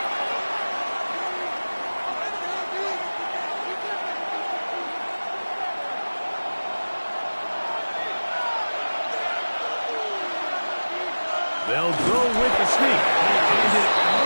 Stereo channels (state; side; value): inverted; both; correlation -1.00